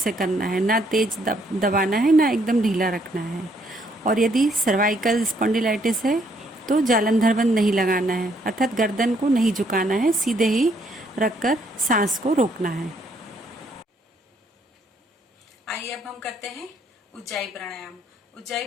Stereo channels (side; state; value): both; normal; correlation 0.69